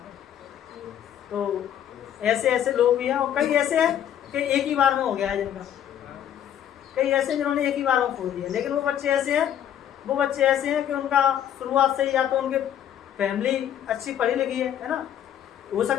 तो ऐसे लोग भी हैं, और कई ऐसे हैं कि एक ही बार में हो गया है जिनका, कई ऐसे जिन्होंने एक ही बार में खो दिया। लेकिन वो बच्चे ऐसे हैं कि उनका शुरुआत से ही या तो उनके फैमिली अच्छी पढ़ी लिखी है ना, हो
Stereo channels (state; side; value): quieter; right; 10.2 dB